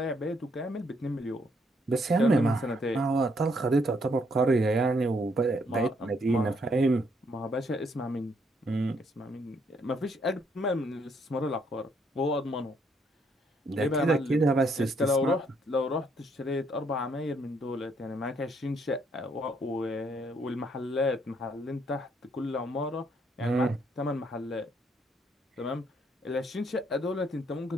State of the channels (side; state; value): both; normal; correlation 0.71